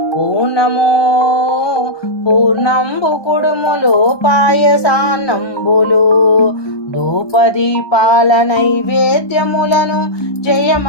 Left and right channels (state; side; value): late; right; 1.2 ms